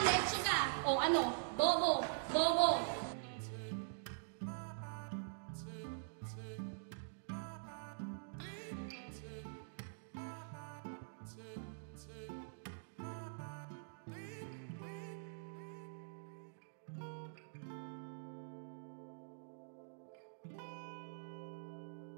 leche ka. O ano, bobo, bobo.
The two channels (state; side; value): silent; left; digital silence